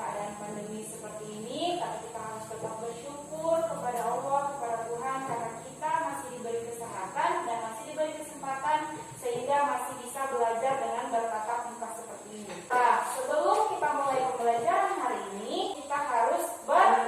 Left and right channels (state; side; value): identical; both; correlation 1.00